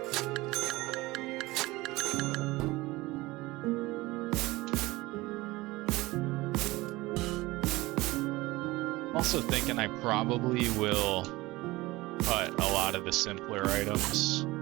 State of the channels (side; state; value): left; quieter; 20.3 dB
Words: Also thinking I probably will cut a lot of the simpler items.